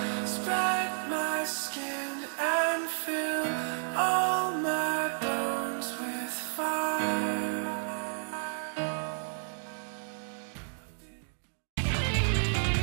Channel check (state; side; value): silent; left; digital silence